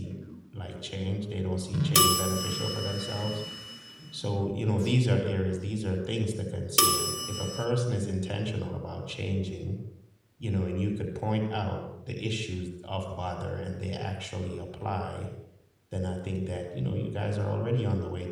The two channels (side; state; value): both; identical; correlation 1.00